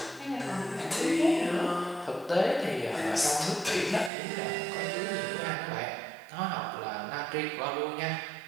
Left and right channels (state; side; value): drops out; left; at 4.1 s